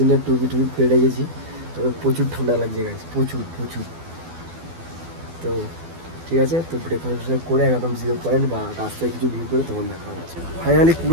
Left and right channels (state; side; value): late; left; 12 ms